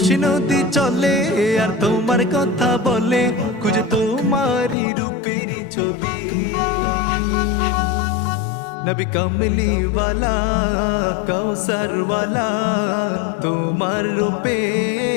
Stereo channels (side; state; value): right; drops out; at 4.8 s